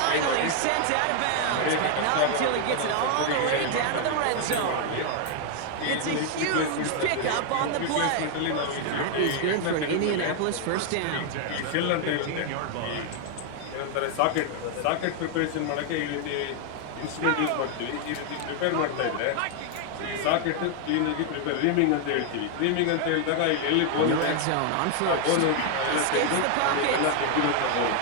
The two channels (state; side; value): different; both; correlation 0.00